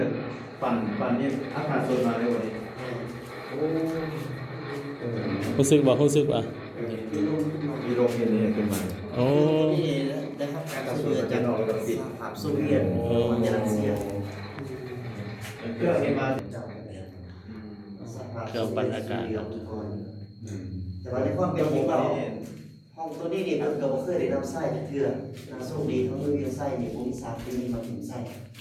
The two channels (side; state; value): both; identical; correlation 1.00